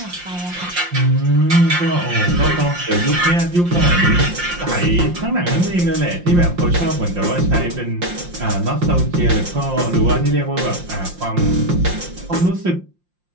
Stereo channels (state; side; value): late; left; 5.7 ms